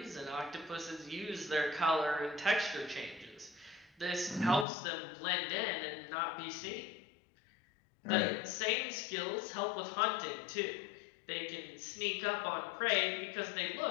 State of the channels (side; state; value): right; drops out; at 4.7 s